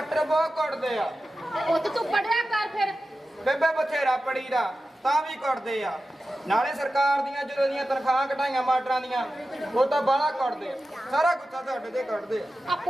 ਬਹੁਤ ਕੁੱਟਦੇ ਆ। ਪੁੱਤ ਤੂੰ ਪੜਿਆ ਕਰ ਫਿਰ। ਬੇਬੇ ਬਥੇਰਾ ਪੜੀਦਾ ਤਾਂ ਵੀ ਕੁੱਟਦੇ ਆ। ਨਾਲੇ ਸਰਕਾਰ ਦੀਆਂ ਜਦੋਂ ਦੀਆਂ ਤਨਖਾਹਾਂ ਘਟਾਈਆਂ ਮਾਸਟਰਾਂ ਦੀਆਂ, ਉਹ ਤਾਂ ਬਾਹਲਾ ਕੁੱਟਦੇ ਆ। ਸਾਰਾ ਗੁੱਸਾ ਤੁਹਾਡੇ ਤੇ ਕੱਢਦੇ ਆ। ਆ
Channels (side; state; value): both; normal; correlation 0.93